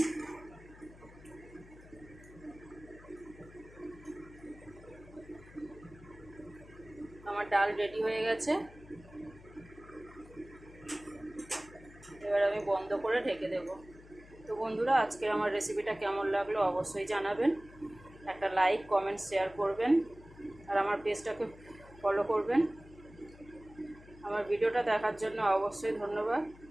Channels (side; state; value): left; noise; hum, 20 dB below the sound